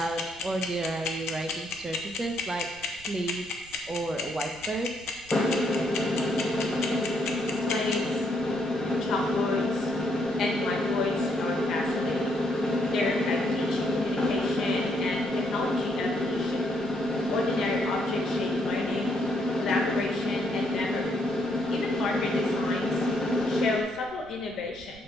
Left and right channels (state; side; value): noise; right; rumble, 22 dB below the sound